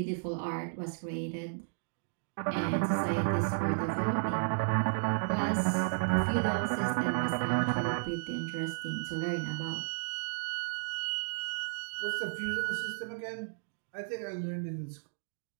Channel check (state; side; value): silent; left; digital silence